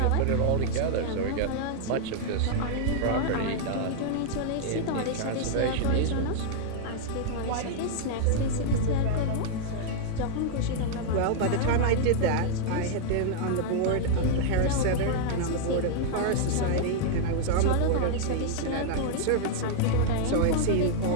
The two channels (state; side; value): different; both; correlation -0.01